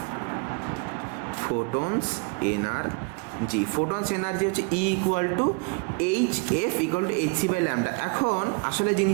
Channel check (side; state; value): left; quieter; 31.7 dB